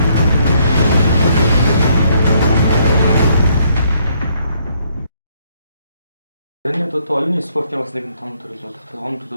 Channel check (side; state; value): both; inverted; correlation -0.69